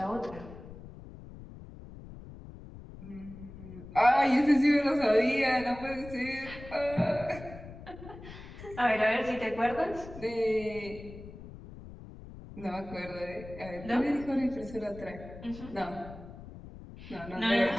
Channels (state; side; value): noise; left; rumble, 15 dB below the sound